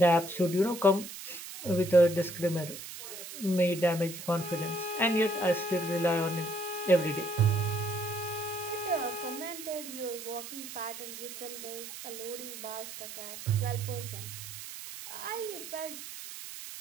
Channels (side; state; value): right; noise; hiss, 11 dB below the sound